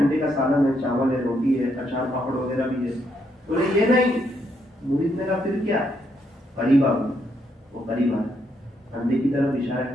کا سالن ہے, چاول ہے, روٹی ہے, اچار پاپڑ وغیرہ بھی ہے. بولے یہ نہیں. مرید نے کہا پھر کیا؟ قریب آ گیا. وہ قریب آیا, انڈے کی طرف اشارہ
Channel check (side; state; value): both; normal; correlation 0.76